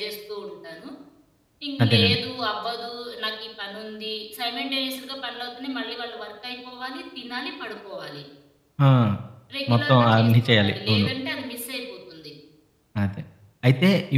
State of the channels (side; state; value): both; identical; correlation 1.00